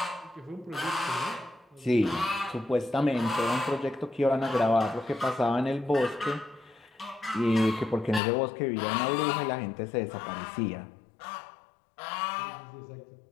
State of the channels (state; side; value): drops out; right; at 8.2 s